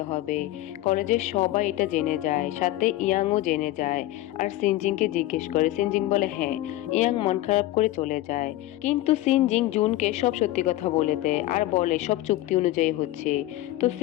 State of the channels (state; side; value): quieter; right; 15.9 dB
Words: হবে। কলেজের সবাই এটা জেনে যায়, সাথে ইয়াংও জেনে যায় আর সিনজিংকে জিজ্ঞেস করে। সিনজিং বলে হ্যাঁ। ইয়াং মন খারাপ করে চলে যায়, কিন্তু সিনজিং জুনকে সব সত্যি কথা বলে দেয় আর বলে সব চুক্তি অনুযায়ী হচ্ছে। তো